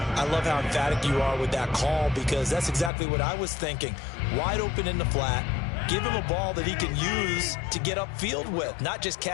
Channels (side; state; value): right; drops out; at 2.9 s